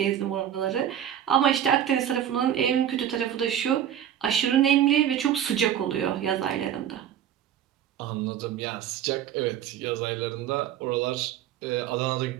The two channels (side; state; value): left; quieter; 10.2 dB